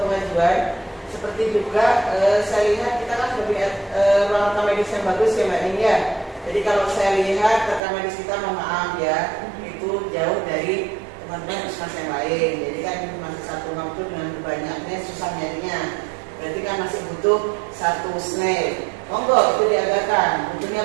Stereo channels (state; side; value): drops out; left; at 7.8 s